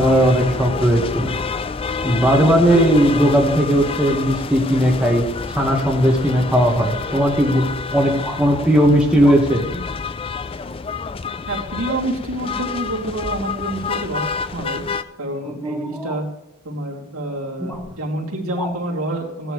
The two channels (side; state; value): both; normal; correlation 0.65